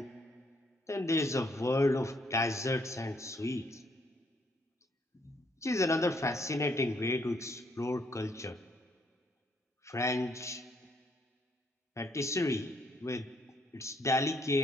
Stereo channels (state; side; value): normal; both; correlation 0.70